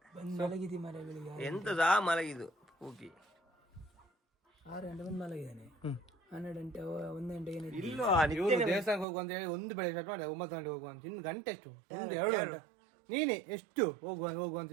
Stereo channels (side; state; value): left; drops out; at 9.1 s